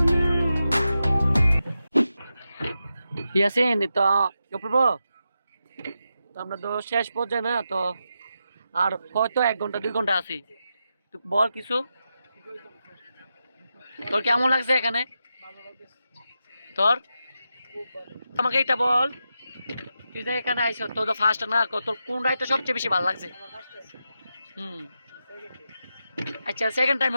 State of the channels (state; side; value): inverted; both; correlation -0.88